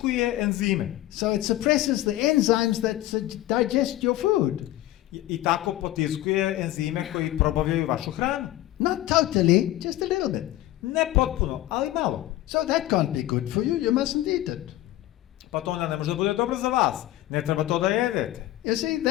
enzime. So it suppresses the enzymes that digest your food. I tako potiskuje enzime koji probavljaju vašu hranu. Not totally, just a little bit. Ne potpuno, ali malo. So that can't be good for you, you mustn't eat it. Pa to onda ne može da bude dobro za vas. Ne treba to da jedete. You see,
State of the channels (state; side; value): quieter; right; 15.3 dB